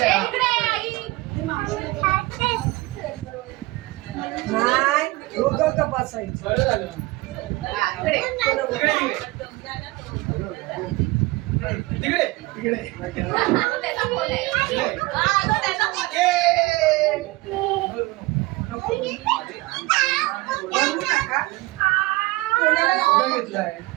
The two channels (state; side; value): quieter; left; 21.5 dB